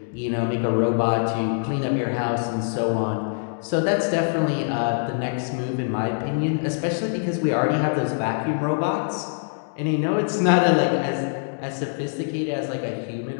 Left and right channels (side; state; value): right; silent; digital silence